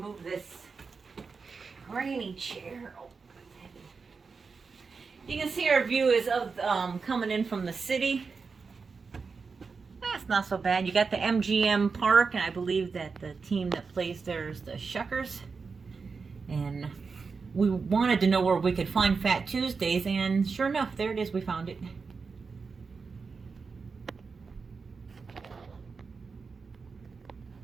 this grainy chair. Oh, you can see our view is of coming in from the city. That's not so bad. You got the MGM Park, and I believe that the team that plays there is the Shuckers. And we wanted to know where we could find Fat Tuesdays, and sure enough, there it is. We found it.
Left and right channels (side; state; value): left; quieter; 4.9 dB